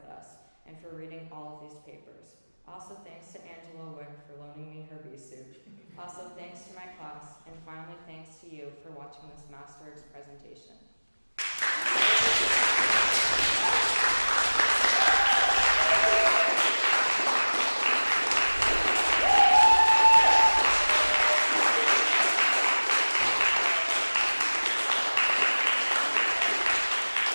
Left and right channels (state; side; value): inverted; both; correlation -1.00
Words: us and for reading all of these papers. Also, thanks to Angela Wick for loaning me her bee suit. Also, thanks to my class, and finally, thanks to you for watching this Masterworks presentation.